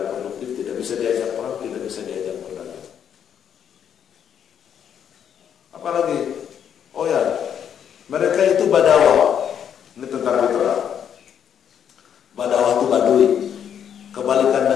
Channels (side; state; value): right; quieter; 8.6 dB